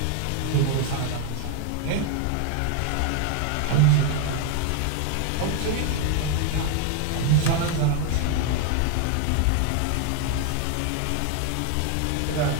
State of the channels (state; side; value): different; both; correlation 0.01